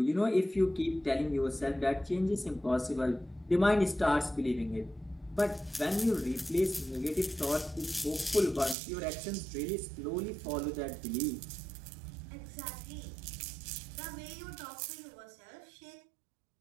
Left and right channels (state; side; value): drops out; left; at 8.8 s